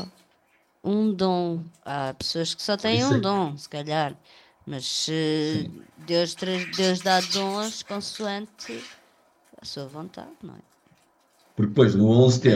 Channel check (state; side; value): identical; both; correlation 1.00